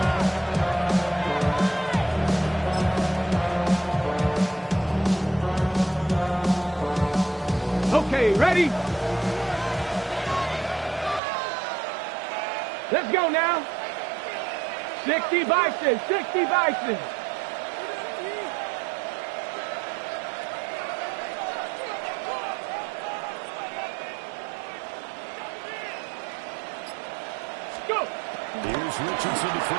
Okay, ready? Let's go now. 60 Bison, 60 Bison. Go. Here's Richardson to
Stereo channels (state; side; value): drops out; left; at 11.2 s